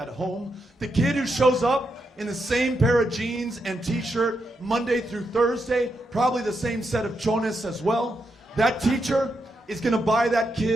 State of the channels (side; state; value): both; normal; correlation 0.83